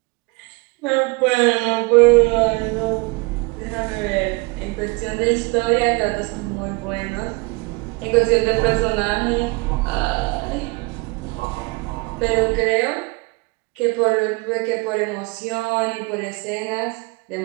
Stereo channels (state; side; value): quieter; left; 27.5 dB